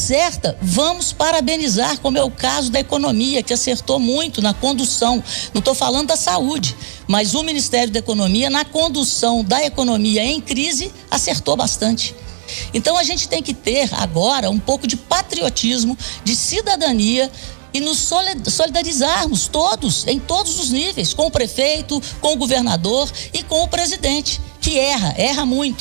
vamos parabenizar, como é o caso da economia, que acertou muito na condução. Não estou falando da saúde, mas o Ministério da Economia, na condução da economia em crise, acertou bastante. Então, a gente tem que ter agora um pouco de patriotismo, de cidadania e nos solidarizarmos todos, em todos os níveis, com o prefeito, com o governador e com o presidente, que erra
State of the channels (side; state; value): left; silent; digital silence